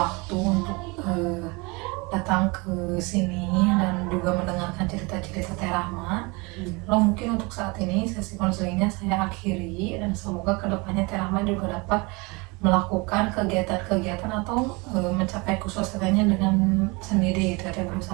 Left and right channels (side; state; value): left; quieter; 27.0 dB